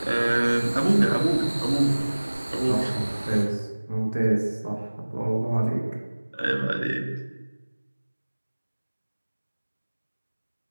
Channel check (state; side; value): inverted; both; correlation -1.00